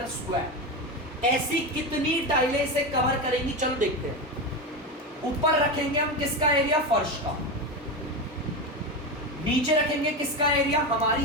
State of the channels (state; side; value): normal; both; correlation 0.17